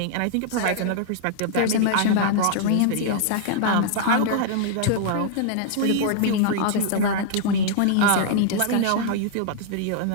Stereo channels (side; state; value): both; different; correlation -0.01